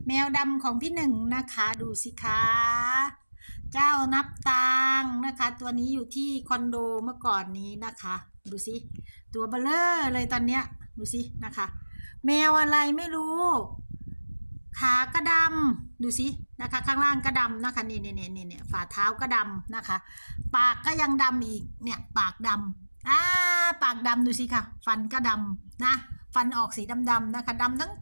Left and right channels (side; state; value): both; inverted; correlation -1.00